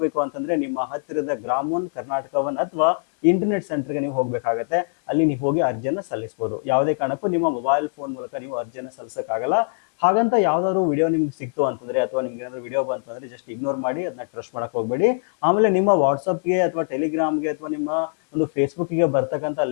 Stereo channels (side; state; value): right; silent; 64 dB below the other